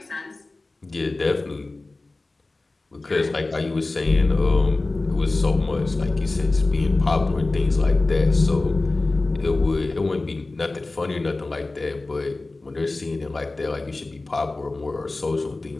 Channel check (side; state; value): right; quieter; 3.2 dB